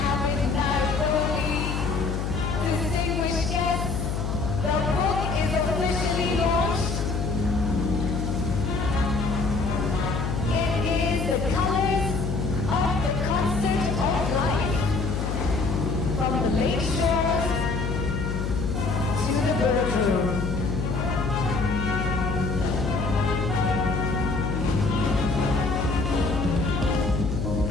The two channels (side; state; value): left; noise; hum, 1 dB below the sound